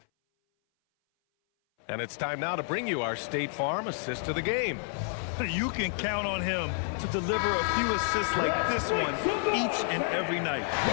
And it's time now to bring you our State Farm assist of the game. You can count on him to deliver a few assists like this one each and every night.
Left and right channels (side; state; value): right; silent; 58 dB below the other